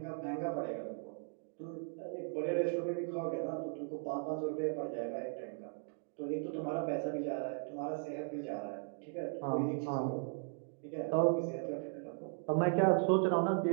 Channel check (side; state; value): left; silent; 53 dB below the other